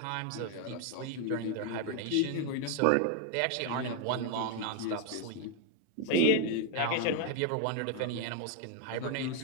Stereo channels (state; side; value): different; both; correlation 0.00